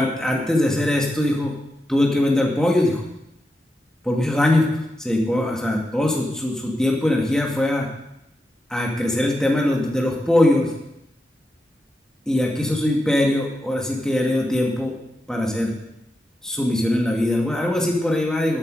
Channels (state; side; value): normal; both; correlation 0.87